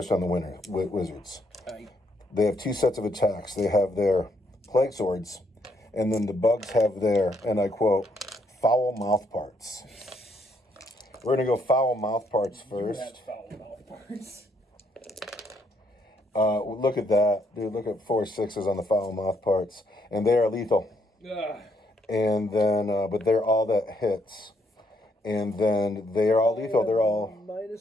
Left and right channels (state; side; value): normal; both; correlation 0.72